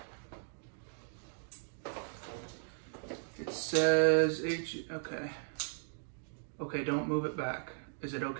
It says H, okay. Okay, don't move it back. Is it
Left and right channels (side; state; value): left; silent; digital silence